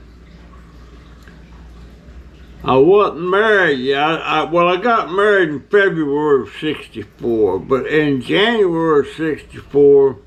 I wasn't married yet. I got married in February of 64, but in January of 64,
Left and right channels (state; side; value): identical; both; correlation 1.00